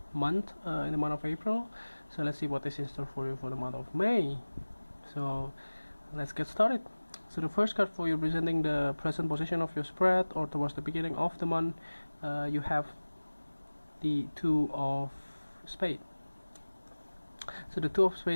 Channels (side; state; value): both; inverted; correlation -1.00